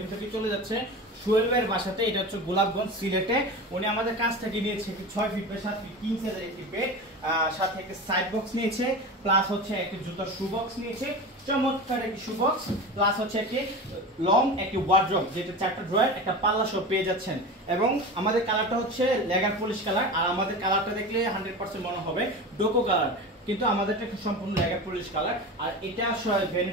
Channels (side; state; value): both; normal; correlation 0.29